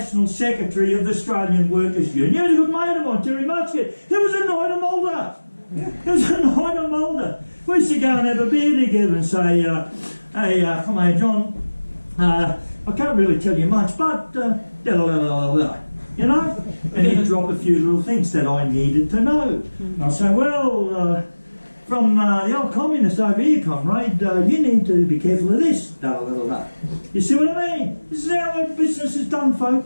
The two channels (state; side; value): inverted; both; correlation -1.00